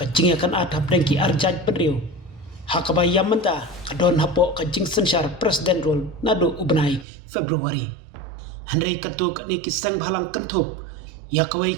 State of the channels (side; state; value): left; drops out; at 7.1 s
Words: akan adhap dengki arjaj penriu hakabayam menta kadon hapo kajing sensyar presiden rul nadu ubenai Februari Henry katu kani ki seng halang kentup ia kawai